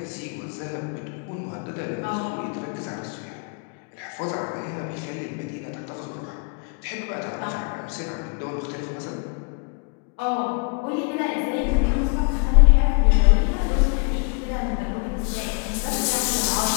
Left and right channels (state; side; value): quieter; right; 37.0 dB